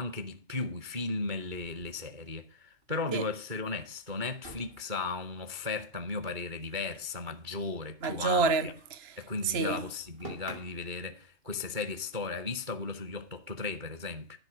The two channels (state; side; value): late; left; 2.3 ms